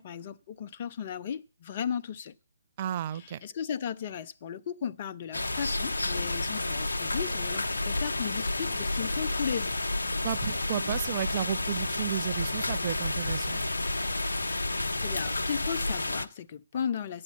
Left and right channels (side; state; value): both; inverted; correlation -0.82